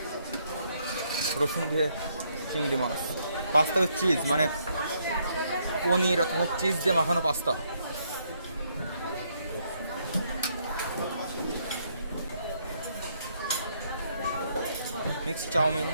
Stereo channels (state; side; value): inverted; both; correlation -0.73